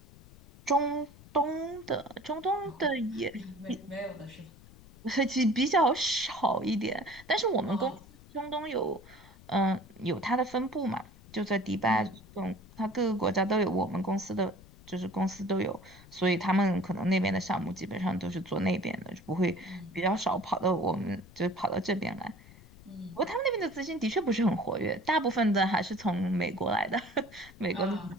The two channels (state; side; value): noise; left; rumble, 22 dB below the sound